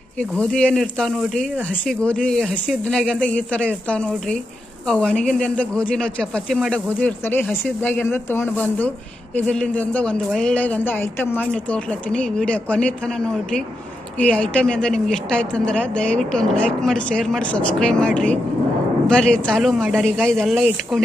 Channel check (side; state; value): both; normal; correlation 0.86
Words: ಈ ಗೋಧಿ ಏನು ಇರ್ತಾವೆ ನೋಡಿರಿ, ಹಸಿ ಗೋಧಿ, ಹಸಿ ಇದ್ದನಾಗಿಂದ ಈ ಥರ ಇರ್ತಾವೆ ನೋಡಿರಿ. ಅವು ಒಣಗಿಂದಿಂದ ಗೋಧಿ ನಾವು ಚಪಾತಿ ಮಾಡೋ ಗೋಧಿ ಇರ್ತಾರೆ, ಹಸಿದ್ದಾಗಿಂದ ತೊಗೊಂಡು ಬಂದು ಇದರಿಂದ ಒಂದು ಒಳ್ಳೆಯದಂದ ಐಟಮ್ ಮಾಡಿ ನೀವು ತೋರ್ಲತ್ತೀನಿ. ಈ ವಿಡಿಯೋ ಕೊನೆ ತನಕ ನೋಡಿರಿ. ಈ ಐಟಮ್ ಇಂದ ನಿಮ್ಗೆ ಇಷ್ಟ ಆಯ್ತು ಅಂದ್ರೆ ದಯವಿಟ್ಟು ಒಂದು ಲೈಕ್ ಮಾಡಿ, ಶೇರ್ ಮಾಡಿ, ಸಬ್ಸ್ಕ್ರೈಬ್ ಮಾಡಿರಿ. ಬರ್ರಿ ಚಾಲೂ ಮಾಡ್ಯಾರ. ಈಗ ಇದೆಲ್ಲ